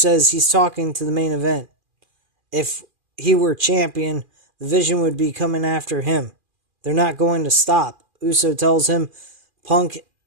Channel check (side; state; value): left; late; 2.4 ms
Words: he's talking to the main event. If he were champion, the Vision would be coming after him. They're not going to stop. Uso tells Punk